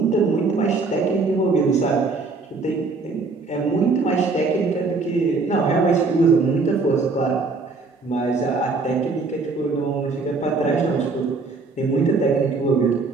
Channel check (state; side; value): quieter; left; 4.0 dB